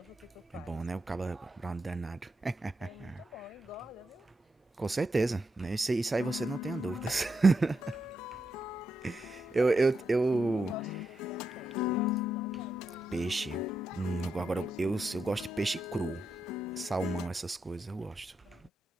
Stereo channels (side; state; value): both; normal; correlation 0.84